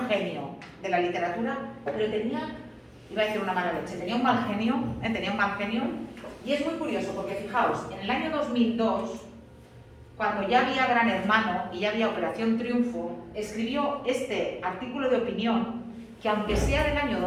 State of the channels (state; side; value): identical; both; correlation 1.00